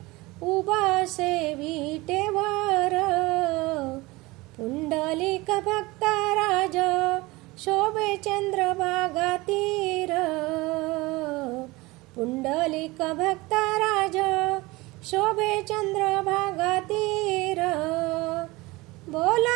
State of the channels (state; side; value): quieter; left; 22.0 dB